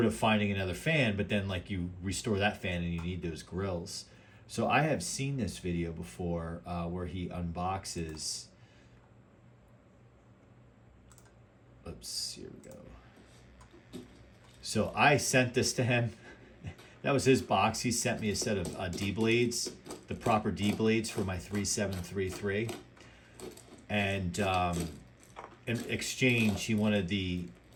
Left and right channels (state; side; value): identical; both; correlation 1.00